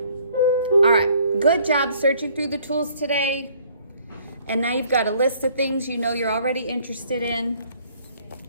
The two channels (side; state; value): both; inverted; correlation -0.60